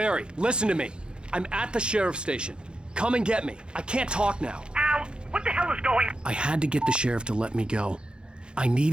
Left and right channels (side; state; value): left; late; 0.051 ms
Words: listen to me. I'm at the sheriff's station. Come and get me. I can't talk now. Ow! What the hell is going... I had to get the sheriff to let me go. I